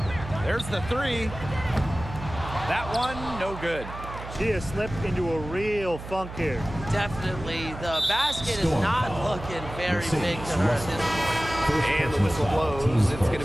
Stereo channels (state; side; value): noise; right; hum, 11 dB below the sound